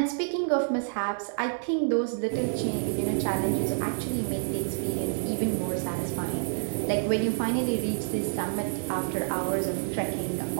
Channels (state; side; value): silent; left; 59 dB below the other